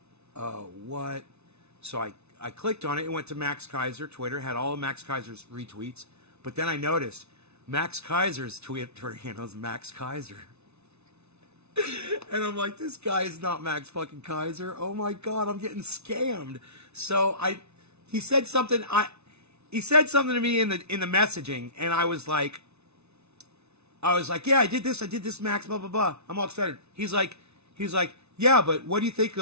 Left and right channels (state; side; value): late; left; 0.81 ms